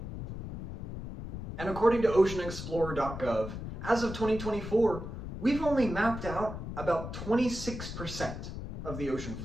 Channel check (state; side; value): noise; left; rumble, 7 dB below the sound